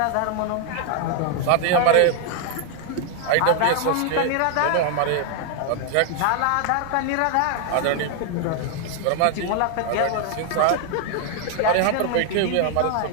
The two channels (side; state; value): both; different; correlation 0.00